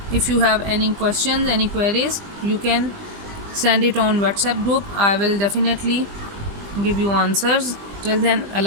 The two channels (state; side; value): late; left; 20 ms